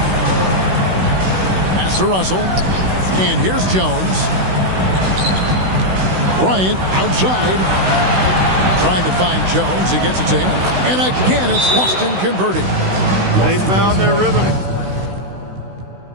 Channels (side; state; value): left; late; 16 ms